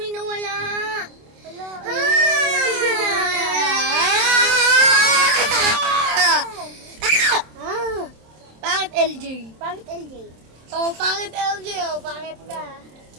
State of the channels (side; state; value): left; late; 27 ms